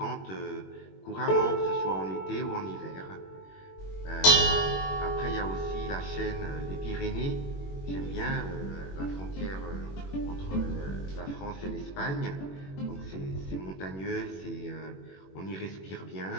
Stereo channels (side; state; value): right; late; 21 ms